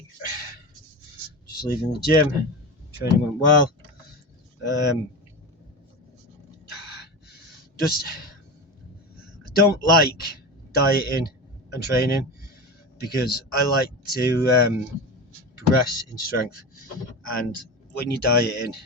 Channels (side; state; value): both; normal; correlation 0.24